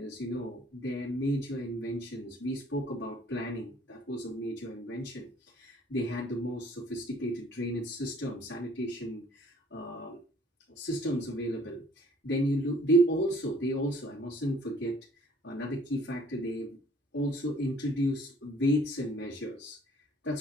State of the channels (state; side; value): normal; both; correlation 0.57